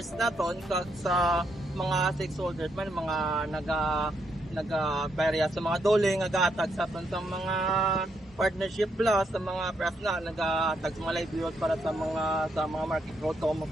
naton sa mga stakeholders man mga naga-barya sa mga dole nga gahatag sa mga partnership plus sa mga press na nag-tag sa mga livelihood para sa mga market road to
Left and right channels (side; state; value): both; normal; correlation 0.77